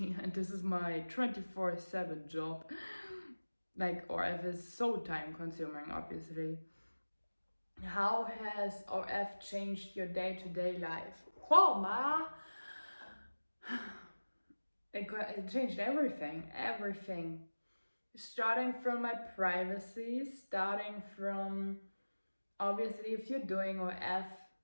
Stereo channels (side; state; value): both; inverted; correlation -1.00